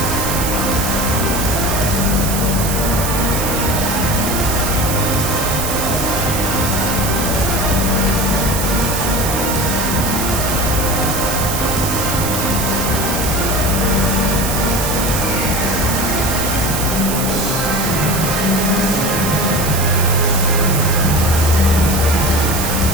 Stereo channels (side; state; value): right; noise; hiss, 3 dB below the sound